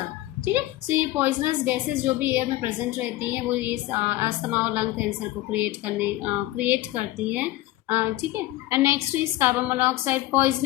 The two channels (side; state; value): right; quieter; 16.6 dB